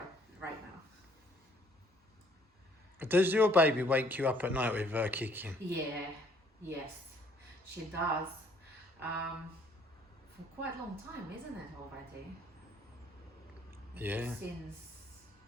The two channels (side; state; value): both; normal; correlation 0.63